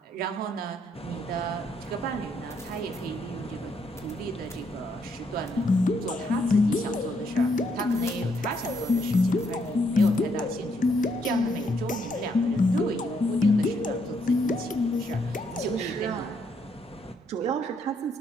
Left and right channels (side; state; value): both; normal; correlation 0.74